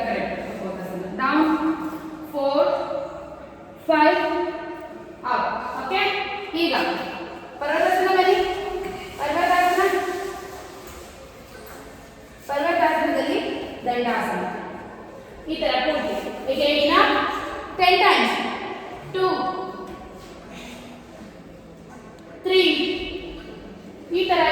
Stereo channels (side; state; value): both; identical; correlation 1.00